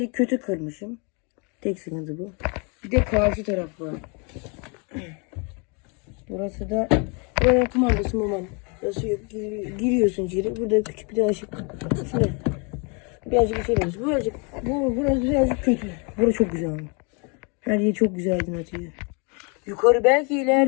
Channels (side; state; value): right; quieter; 33.9 dB